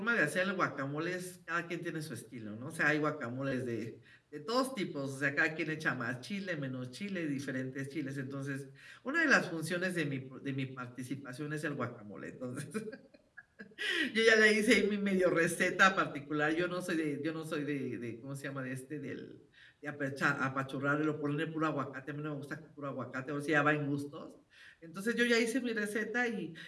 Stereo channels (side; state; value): both; identical; correlation 1.00